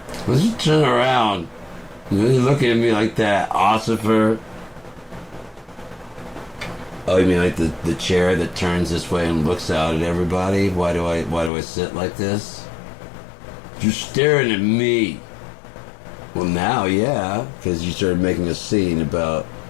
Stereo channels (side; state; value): right; drops out; at 11.5 s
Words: Let's just turn around. You're looking at me like that, Ossifer. Oh, you mean like the chair that turns this way and looks out at everybody? Why do I sit like this? You're staring at me. Well, now, yeah, because you started making a scene about